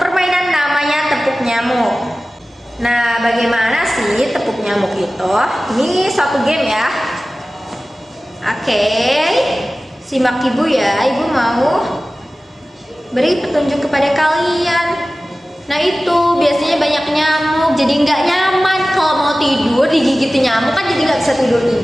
permainan namanya tepuk nyamuk. Nah, bagaimana sih tepuk nyamuk itu? Ini suatu game ya. Oke, simak Ibu ya. Ibu mau beri petunjuk kepada kalian. Nah itu biasanya banyak nyamuk, jadi nggak nyaman kalau mau tidur digigit nyamuk kan jadi nggak bisa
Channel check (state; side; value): normal; both; correlation 0.96